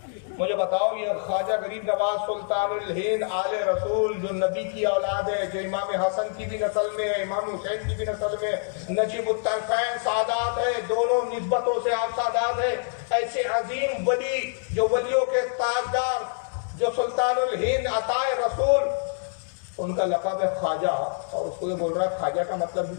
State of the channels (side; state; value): right; silent; digital silence